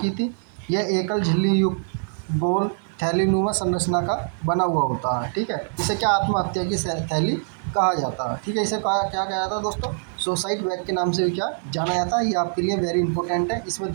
थी। यह एकल झिल्ली युक्त गोल थैलीनुमा संरचना का बना हुआ होता है। ठीक है, इसे क्या आत्महत्या की थैली कहा जाता है। ठीक है, इसे क्या कहा जाता है दोस्तों, सुसाइड बैग के नाम से भी क्या जाना जाता है। ये आपके लिए वेरी इंपॉर्टेंट है। इसमें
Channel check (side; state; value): left; silent; 62 dB below the other